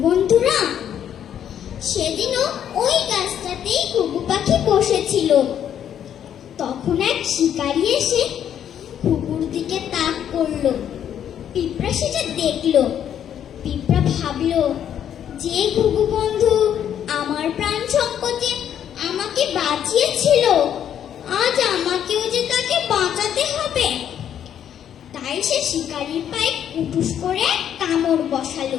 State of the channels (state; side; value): quieter; right; 9.6 dB